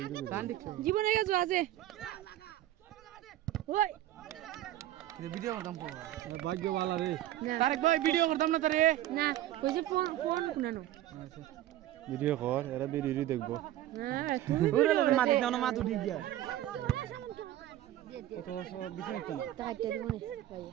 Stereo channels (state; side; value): quieter; left; 13.8 dB